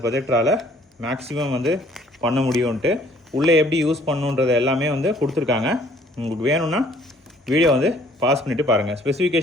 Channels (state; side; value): normal; both; correlation 0.59